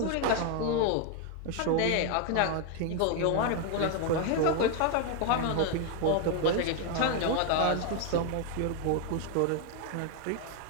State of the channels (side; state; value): both; different; correlation 0.01